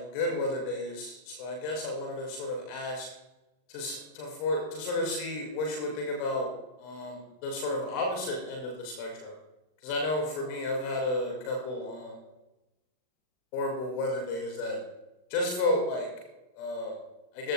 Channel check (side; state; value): right; late; 39 ms